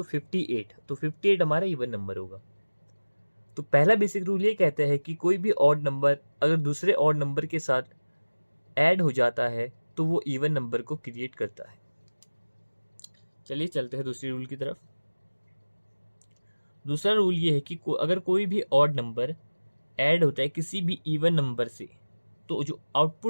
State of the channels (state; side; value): inverted; both; correlation -1.00